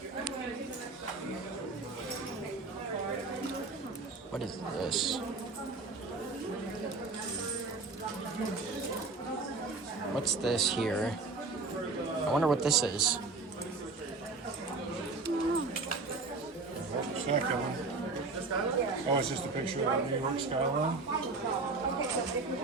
What is this? What's this here? I wonder what this is. Check them. Oh, it's just a picture of the New York skyline.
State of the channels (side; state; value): left; quieter; 3.8 dB